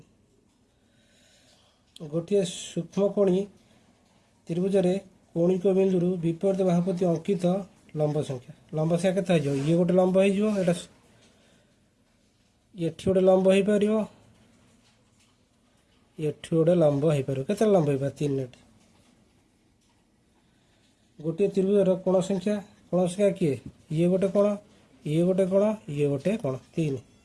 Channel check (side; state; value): both; identical; correlation 1.00